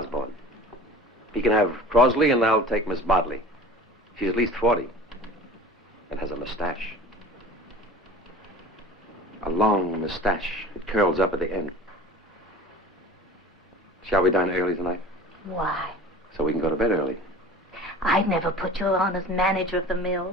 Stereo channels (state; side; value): normal; both; correlation 0.41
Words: He can have Crosley, and I'll take Miss Bodley. She's at least 40 and has a mustache. A long mustache. It curls up at the end. Shall we dine early tonight? Why? So we can go to bed early. I'd never put you on as manager of the